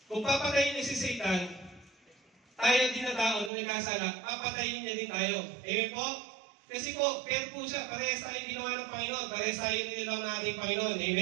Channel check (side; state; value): left; drops out; at 3.5 s